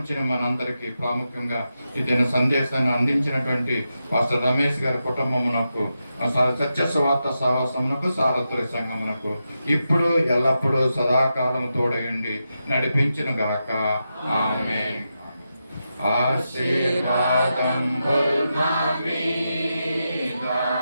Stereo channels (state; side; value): inverted; both; correlation -0.88